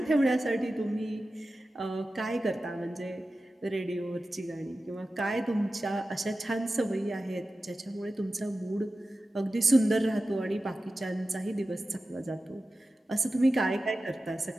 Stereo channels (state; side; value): normal; both; correlation 0.94